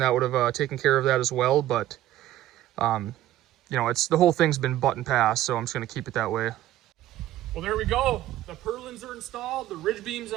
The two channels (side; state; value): left; quieter; 13.7 dB